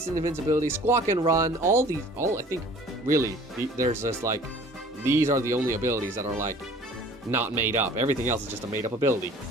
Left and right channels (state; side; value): normal; both; correlation 0.49